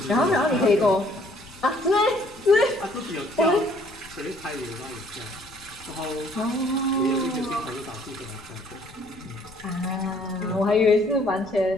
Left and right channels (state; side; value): noise; left; rumble, 22 dB below the sound